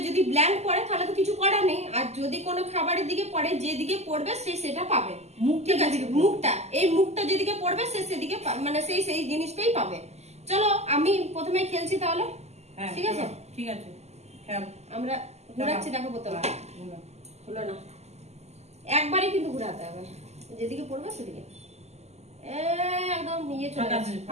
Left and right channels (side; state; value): left; late; 0.32 ms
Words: যদি ব্ল্যাঙ্ক পড়ে তাহলে তো কিছু করার নেই, আর যদি কোনো খাবারের দিকে পড়ে যেদিকে পড়বে সে সেটা পাবে। ঠিক আছে, মুখটা এই মুখটা যেদিকে পড়বে সে সেদিকে মানে সেই জিনিসটাই পাবে। চলো আমি প্রথমে খেলছি তাহলে। ঠিক আছে ঠিক আছে, আমরা ঘুরাচ্ছি। দেখো বোতল হলো না, একবারে কিন্তু ঘুরাতে হবে, যেদিকে পড়বে সেদিকে একদম ইয়ে চলে গেছে,